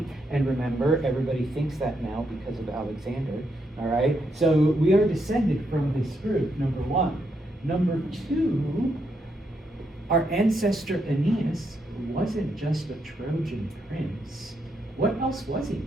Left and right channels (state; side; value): normal; both; correlation 0.79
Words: And remember, everybody thinks that now because of Alexander, all right? So we are descended from this group, number 1. Number 2, our ancestor Aeneas wasn't just a Trojan prince. What else was he?